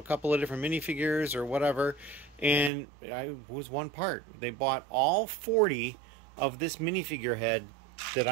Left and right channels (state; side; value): drops out; left; at 2.7 s